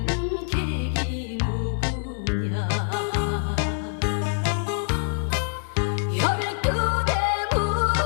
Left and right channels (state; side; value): silent; right; digital silence